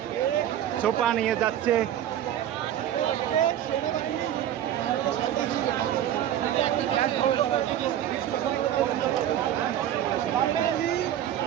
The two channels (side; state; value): left; quieter; 11.3 dB